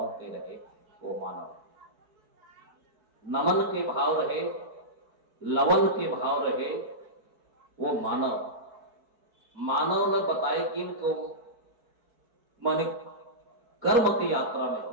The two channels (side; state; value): left; late; 4.6 ms